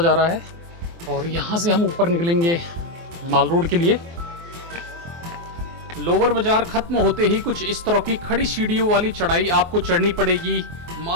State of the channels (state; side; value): late; left; 24 ms